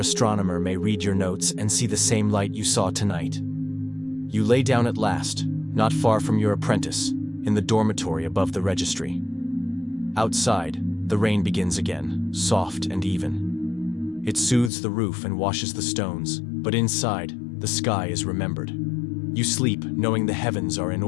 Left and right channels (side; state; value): right; drops out; at 14.7 s